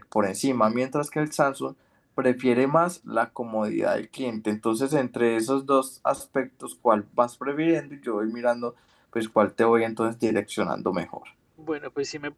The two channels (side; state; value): both; identical; correlation 1.00